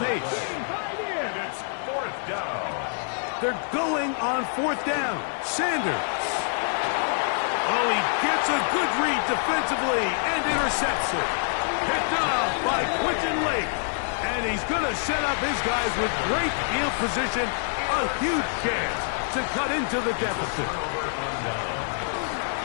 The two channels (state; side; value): silent; right; digital silence